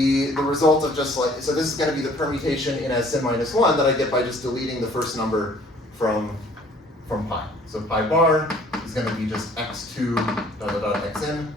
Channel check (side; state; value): both; normal; correlation 0.56